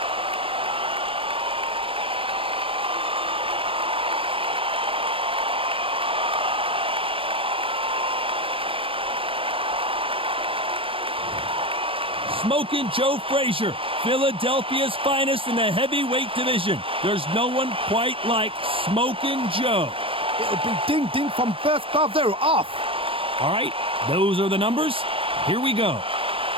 Smoking Joe Frazier, Philadelphia's finest in the heavyweight division. There's no one quite like Smoking Joe. It'll be ding-ding from first glove. They're off. All right, those are the numbers. Here we go.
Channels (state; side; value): late; left; 0.26 ms